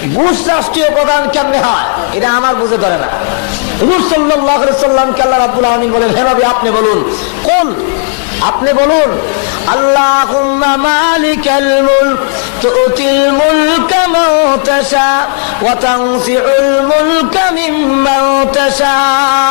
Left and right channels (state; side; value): silent; right; digital silence